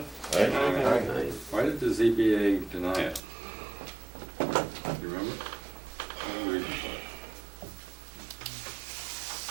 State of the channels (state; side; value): drops out; left; at 3.2 s